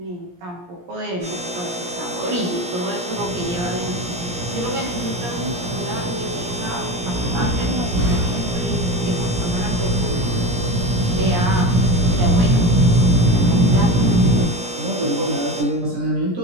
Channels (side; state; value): left; late; 17 ms